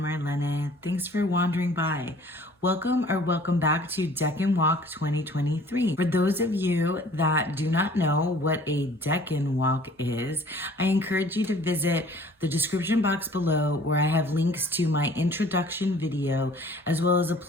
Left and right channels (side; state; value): both; normal; correlation 0.52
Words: Marlene. Thanks for wandering by. Welcome or welcome back to Decan Walk 2023. For those of you that do not know what a Decan Walk is, I encourage you to visit the description box below where I have links to my introduction video as well as a